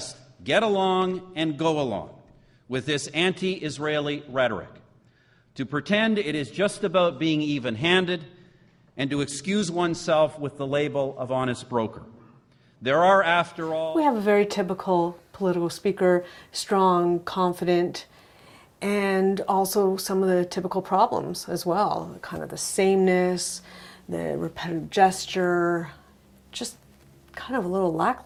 get along and go along with this anti-Israeli rhetoric, to pretend it is just about being even-handed, and to excuse oneself with the label of honest broker. There are, after all... We have a very typical political speaker, strong, confident, and also some of the typical problems as well. Kind of the sameness, the repetitive gesture, just kind of a little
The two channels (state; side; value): identical; both; correlation 1.00